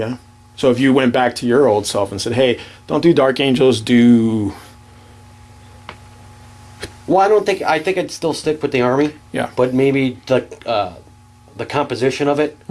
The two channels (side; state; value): both; identical; correlation 1.00